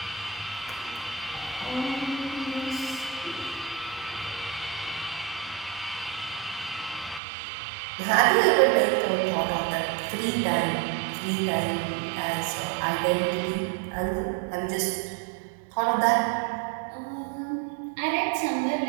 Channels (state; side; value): drops out; left; at 7.2 s